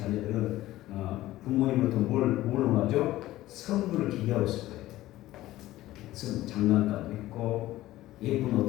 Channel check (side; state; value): right; quieter; 15.8 dB